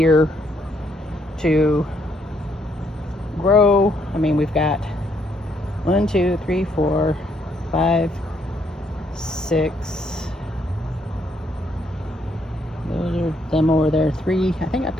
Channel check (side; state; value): both; normal; correlation 0.72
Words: to grow. I mean, we've got 1, 2, 3, 4, 5, 6. Those are them over there. 3. I think I've